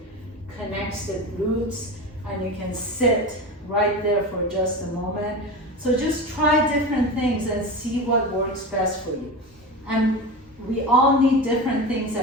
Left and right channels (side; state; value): both; normal; correlation 0.26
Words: connects the glutes, and you can sit right there for just a moment. So just try different things and see what works best for you. And we all need different things